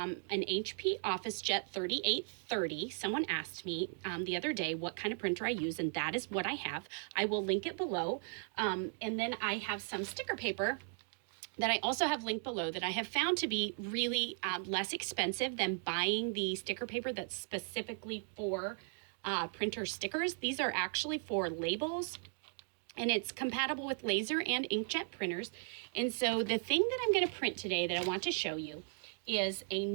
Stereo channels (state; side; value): silent; left; 53 dB below the other